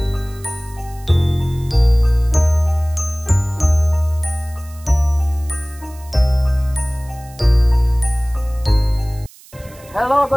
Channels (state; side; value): noise; right; hiss, 24 dB below the sound